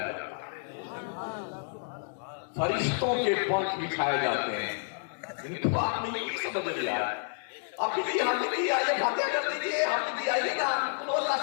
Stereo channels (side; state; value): right; silent; digital silence